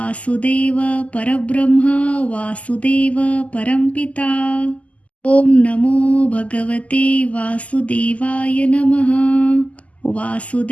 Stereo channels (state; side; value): late; right; 0.069 ms